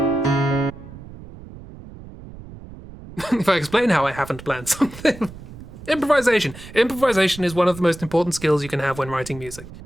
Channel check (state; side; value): noise; right; rumble, 16 dB below the sound